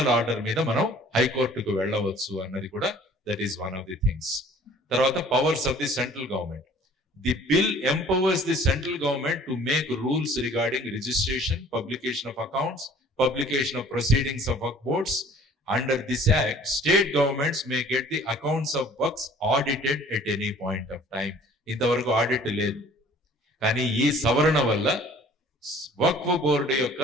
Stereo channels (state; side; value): normal; both; correlation 0.52